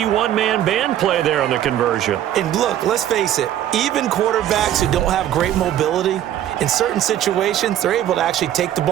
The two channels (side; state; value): left; quieter; 11.7 dB